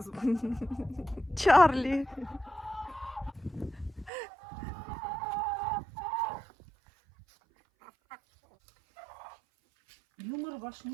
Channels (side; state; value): left; drops out; at 4.1 s